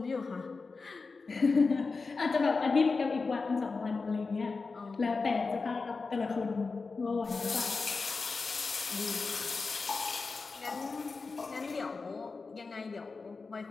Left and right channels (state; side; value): quieter; right; 4.3 dB